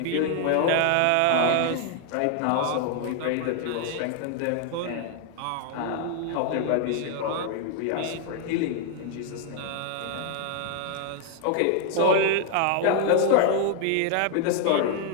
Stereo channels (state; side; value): different; both; correlation 0.00